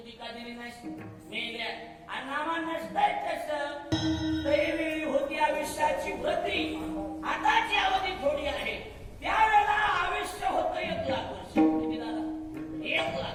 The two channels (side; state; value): both; identical; correlation 1.00